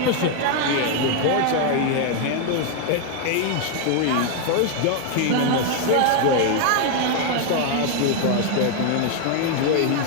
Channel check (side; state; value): both; different; correlation 0.01